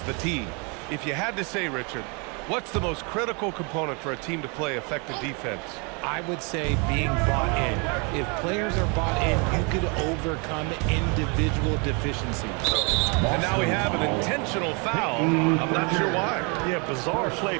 the tee. If you had to say, Richard, what's the most critical component for a team to play effective defense? I would say being bought in. If players are bought in, you could overcome individual deficiencies. And now we have an intentional foul. I'm not sure why. Yeah, bizarre play,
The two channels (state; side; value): quieter; left; 32.9 dB